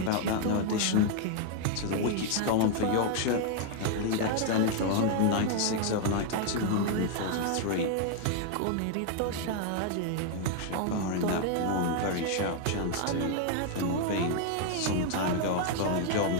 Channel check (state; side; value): different; both; correlation 0.00